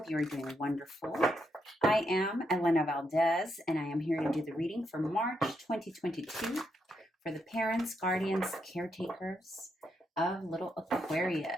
you are doing wonderful. I am Elena Valdez, and I am here to do the reading for March 2022 for the parents, guardians, caretakers of little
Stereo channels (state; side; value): normal; both; correlation 0.80